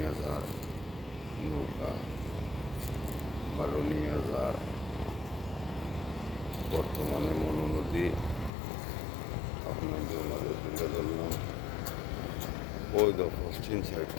যার, নৌকা ভালো নিয়ে যার। বর্তমানে মনু নদী আপনাদের মাঝে তুলে ধরলাম। ওই তো পশ্চিম সাইড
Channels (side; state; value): right; drops out; at 8.5 s